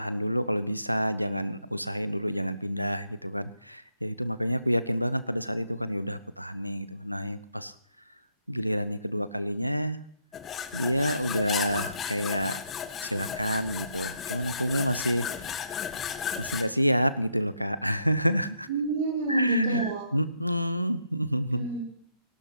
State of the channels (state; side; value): inverted; both; correlation -0.76